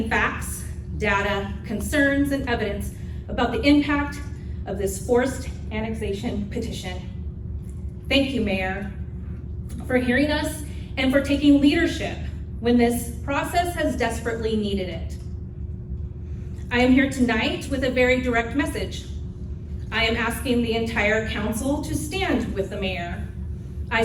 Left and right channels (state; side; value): identical; both; correlation 1.00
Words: facts, data, concerns, and evidence about the impact of this forced annexation petition. Thank you, Mayor, for hearing us and for taking leadership when this process has desperately needed it. I am here tonight with a very direct message. I am asking the entire council to stand with the mayor.